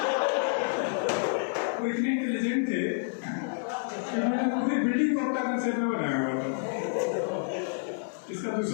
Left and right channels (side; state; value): right; silent; 59 dB below the other